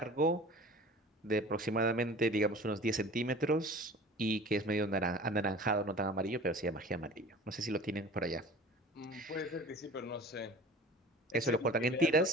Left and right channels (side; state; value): both; normal; correlation 0.42